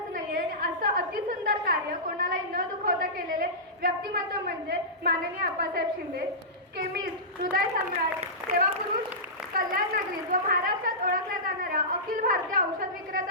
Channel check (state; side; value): normal; both; correlation -0.17